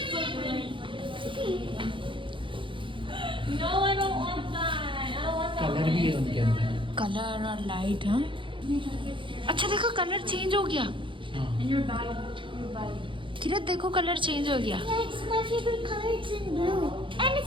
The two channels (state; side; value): late; left; 0.24 ms